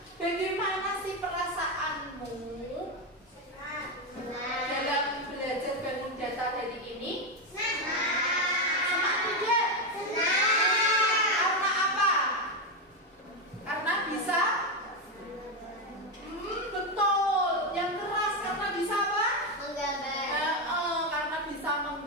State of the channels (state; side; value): normal; both; correlation 0.09